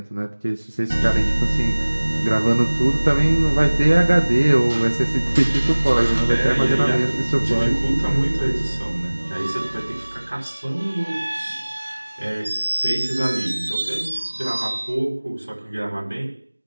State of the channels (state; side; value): inverted; both; correlation -1.00